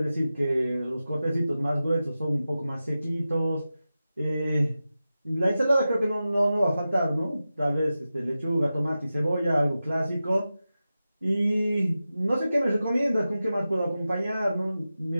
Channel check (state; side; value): inverted; both; correlation -0.93